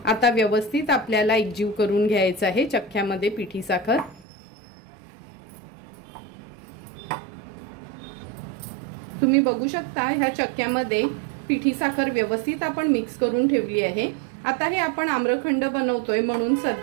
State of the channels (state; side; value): drops out; left; at 4.2 s